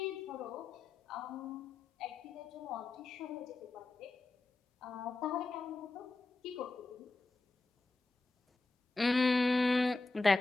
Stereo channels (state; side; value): quieter; right; 3.3 dB